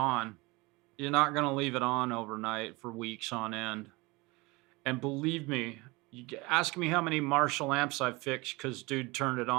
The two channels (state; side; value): quieter; left; 24.2 dB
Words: You're not going to leave it on overnight for weeks on end. And believe me, ask me how many Marshall amps I fixed because dude turned it